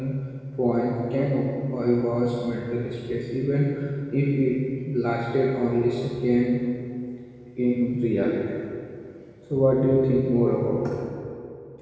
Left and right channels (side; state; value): both; identical; correlation 1.00